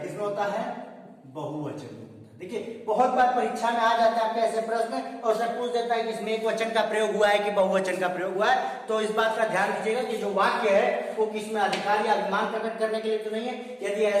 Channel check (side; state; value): both; identical; correlation 1.00